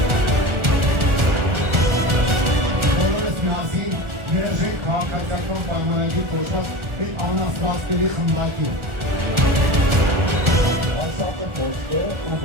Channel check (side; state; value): left; late; 1.4 ms